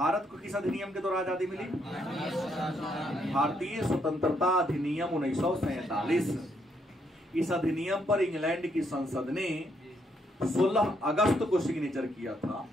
को किस अधिनियम के द्वारा आजादी मिली? भारतीय स्वतंत्रता अधिनियम 1947। इस अधिनियम पर इंग्लैंड की संसद ने 16 अगस्त को सिग्नेचर किया था,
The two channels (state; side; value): normal; both; correlation 0.74